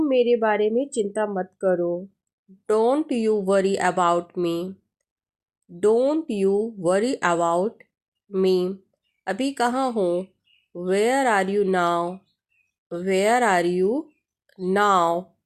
मेरे बारे में चिंता मत करो। Don't you worry about me, don't you worry about me. अभी कहाँ हो? Where are you now, where are you now.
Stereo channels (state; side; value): identical; both; correlation 1.00